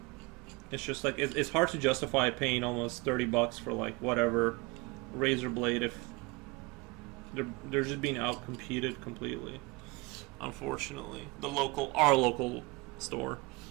it's just like it's hard to justify paying almost $30 for like whatever razor blade if they're just being out competed completely. Unfortunately, our local store,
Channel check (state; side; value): quieter; left; 24.6 dB